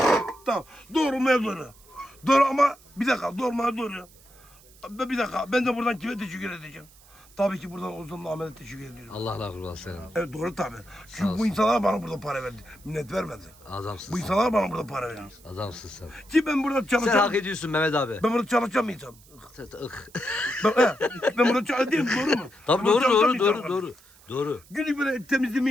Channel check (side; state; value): right; noise; hiss, 26 dB below the sound